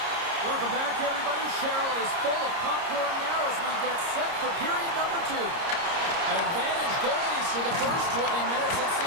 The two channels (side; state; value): left; late; 30 ms